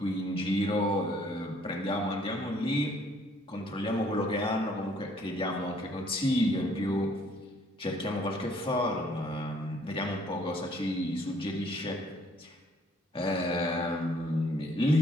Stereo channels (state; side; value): normal; both; correlation 0.62